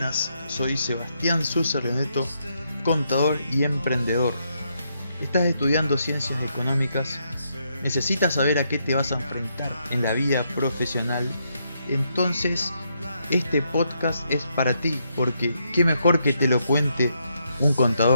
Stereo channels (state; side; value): inverted; both; correlation -0.78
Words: soy Sebastián Suser-Leneto, contador y emprendedor. ¿Estás estudiando ciencias económicas? ¿Necesitas saber a qué te vas a enfrentar en la vida profesional? Entonces, este podcast es para ti, porque qué mejor que te lo cuente un